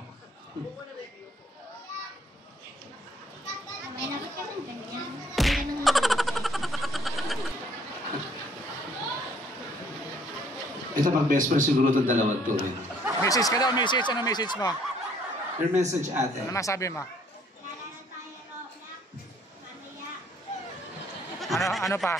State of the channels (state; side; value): normal; both; correlation 0.62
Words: Ito pag best friend siguro itong dalawang to rin. Message ka daw, message. Ano message mo? Your message, ate. Ano masabi mo? Ano pa?